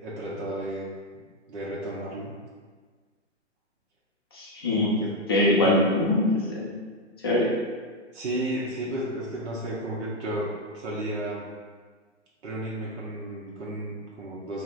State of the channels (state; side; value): normal; both; correlation 0.06